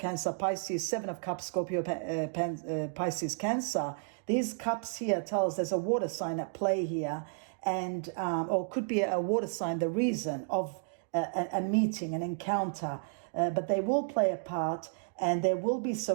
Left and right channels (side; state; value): left; silent; digital silence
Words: Pisces, Seven of Cups, Scorpio, Pisces, Cancer. These cups here tell us there's a water sign at play here, and or could be a water sign, the reason of a meeting, an encounter, but they will play a part, and there will be